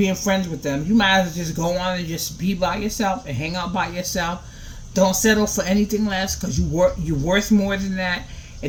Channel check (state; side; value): identical; both; correlation 1.00